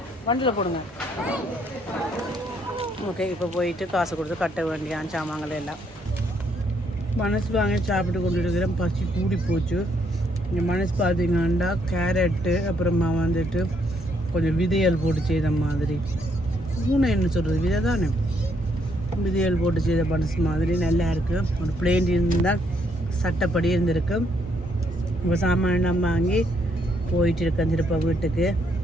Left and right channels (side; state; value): both; normal; correlation 0.72